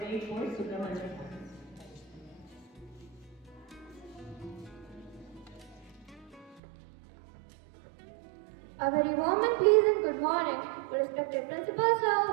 poet Subramaniam Bharati. A very warm and pleasant good morning to respected Principal Sir,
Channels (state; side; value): drops out; left; at 6.6 s